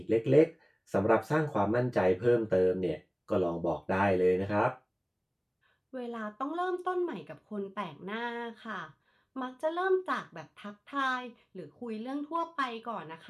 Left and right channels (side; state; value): both; identical; correlation 1.00